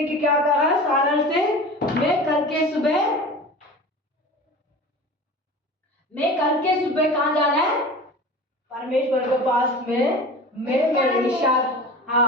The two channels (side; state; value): both; normal; correlation 0.35